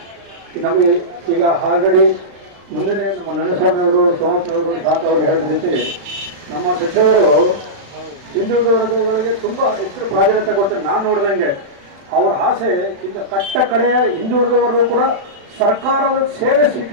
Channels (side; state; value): left; late; 35 ms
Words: ನಮಗೆ ಈಗ ಆಲ್ರೆಡಿ ಮುಂದೆ ನಮ್ಮ ನರಸ್ವಾಮಿಯವರು, ಸೋಮಪ್ಪನವರು, ಶಾಂತ ಅವರು ಹೇಳಿದ ರೀತಿ ನಮ್ಮ ಸಚಿವರು ಹಿಂದುಳಿದ ವರ್ಗಗಳಿಗೆ ತುಂಬಾ ಹೆಚ್ಚು ಪ್ರಾಧಾನ್ಯತೆ ಕೊಟ್ಟು ನಾನು ನೋಡಿದಂಗೆ ಅವರ ಆಸೆ ಇಂದ ಕಟ್ಟ ಕಡೆಯ ಹಿಂದುಳಿದ ವರ್ಗ ಕೂಡ ಸರ್ಕಾರದ ಸೇವೆ